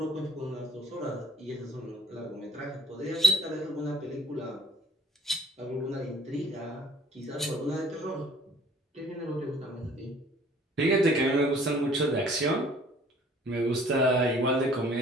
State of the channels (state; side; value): normal; both; correlation 0.54